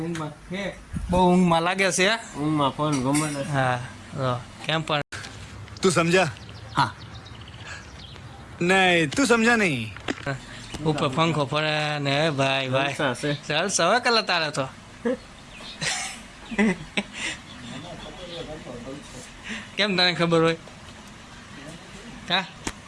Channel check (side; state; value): both; identical; correlation 1.00